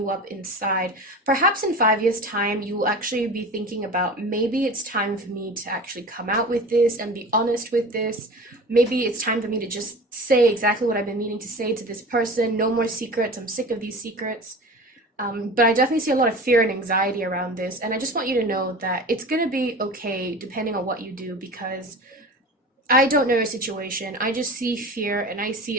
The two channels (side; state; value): both; normal; correlation 0.35